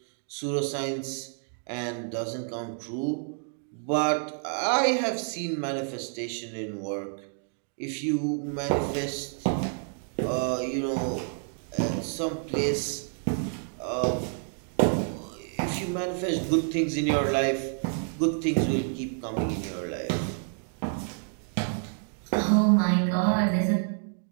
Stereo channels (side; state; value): left; silent; 59 dB below the other